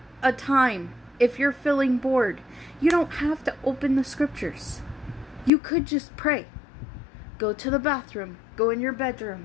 a time. If you're feeling bored, you don't have to open the scriptures. You could just pray. Go to the bathroom. Go in your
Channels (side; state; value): right; drops out; at 5.5 s